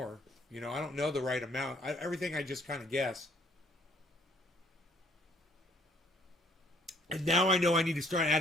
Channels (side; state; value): both; normal; correlation 0.63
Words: You know, I don't know the right amount. Everything I just kind of guess. And now I know I need to start